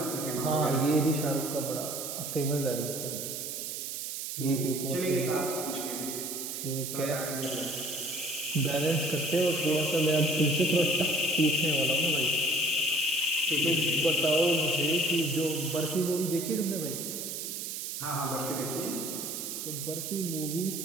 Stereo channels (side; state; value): right; noise; hiss, 5 dB below the sound